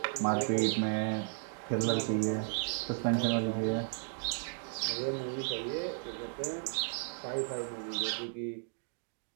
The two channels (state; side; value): silent; left; 55 dB below the other